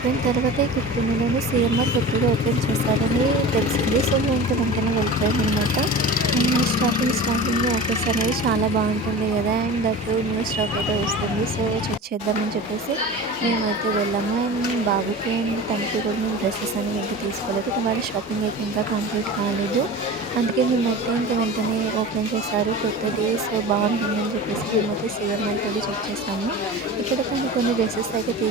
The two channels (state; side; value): normal; both; correlation 0.34